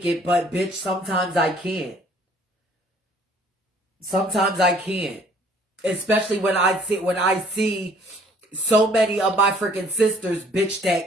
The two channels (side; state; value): both; normal; correlation 0.57